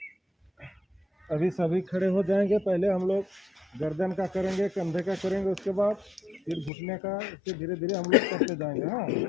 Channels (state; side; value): drops out; right; at 6.7 s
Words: अभी सभी खड़े हो जाएंगे। पहले हम लोग गर्दन का करेंगे, कंधे का करेंगे, उसके बाद फिर घुटने का, इससे धीरे धीरे हम लोग करते जाएंगे। हाँ,